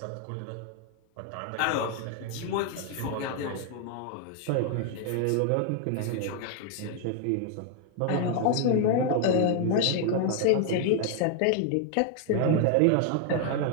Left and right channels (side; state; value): both; different; correlation 0.00